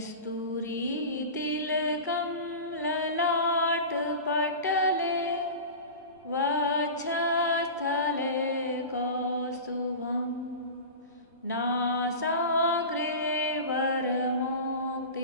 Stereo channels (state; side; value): inverted; both; correlation -0.31